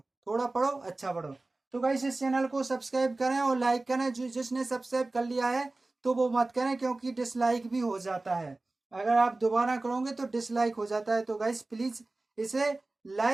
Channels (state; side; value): quieter; left; 3.1 dB